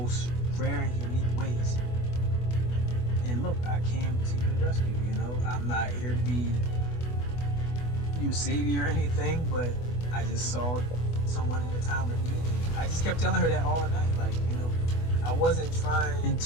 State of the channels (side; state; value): right; late; 24 ms